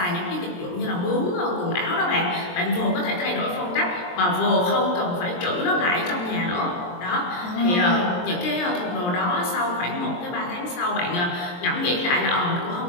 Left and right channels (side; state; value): right; late; 23 ms